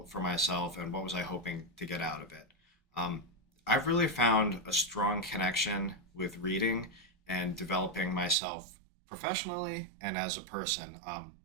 for myself, and what was I hoping to get out of it? I've really found a strong connection with reading and developing myself professionally and as a person.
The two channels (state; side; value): drops out; left; at 8.3 s